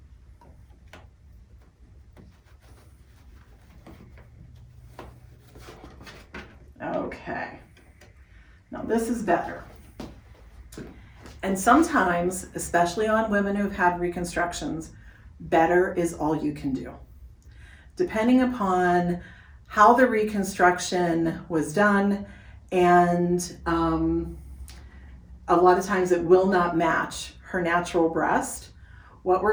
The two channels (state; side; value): identical; both; correlation 1.00